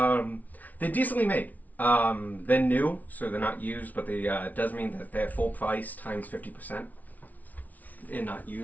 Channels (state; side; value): late; right; 0.075 ms